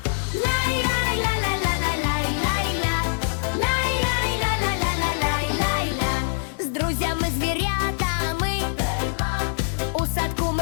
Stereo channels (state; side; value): silent; right; digital silence